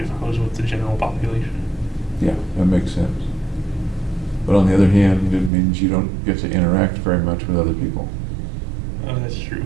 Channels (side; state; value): left; drops out; at 5.5 s